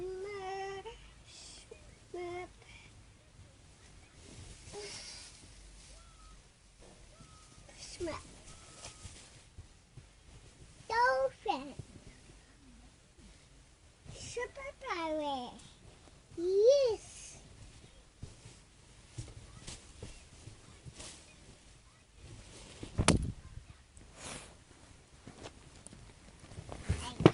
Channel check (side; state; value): both; identical; correlation 1.00